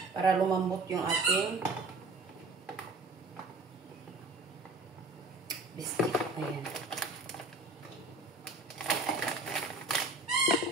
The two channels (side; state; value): left; quieter; 3.1 dB